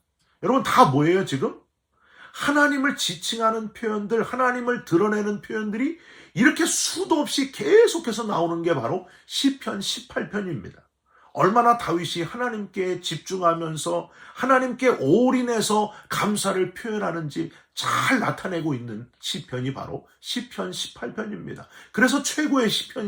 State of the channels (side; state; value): both; identical; correlation 1.00